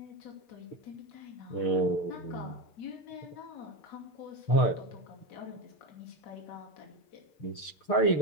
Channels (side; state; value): right; late; 6.6 ms